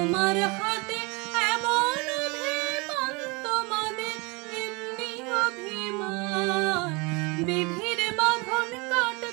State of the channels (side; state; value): left; quieter; 27.6 dB